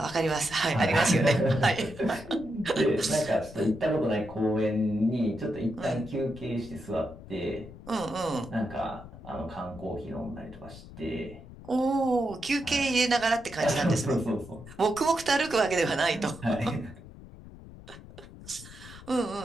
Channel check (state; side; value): noise; left; rumble, 17 dB below the sound